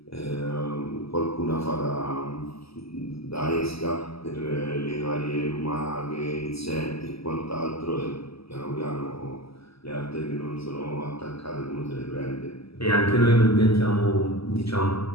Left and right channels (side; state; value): right; late; 0.76 ms